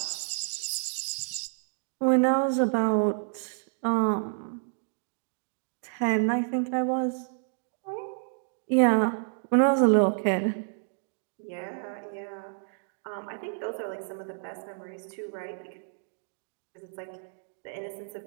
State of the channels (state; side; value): silent; left; digital silence